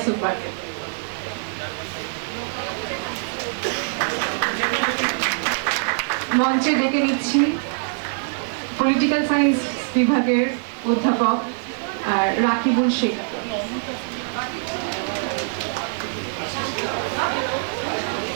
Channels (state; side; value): silent; left; digital silence